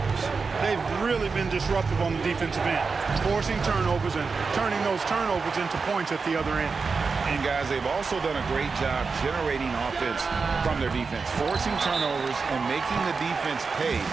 They've really been disruptive on the defensive end, forcing turnovers and turning those turnovers into points at the other end. And guys, they've also done a great job generating offense from their defense, forcing turnovers and making the defense pay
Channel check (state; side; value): quieter; left; 4.8 dB